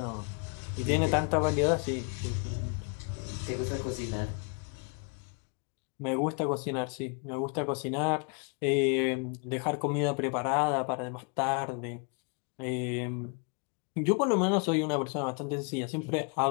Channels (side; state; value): right; quieter; 36.4 dB